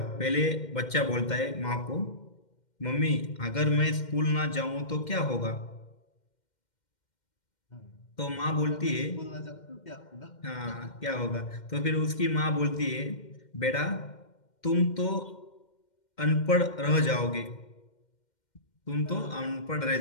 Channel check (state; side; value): late; right; 2.1 ms